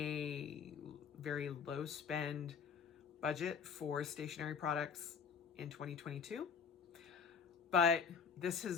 very low spend budget for stationery products in 2022. But this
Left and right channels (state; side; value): quieter; right; 6.3 dB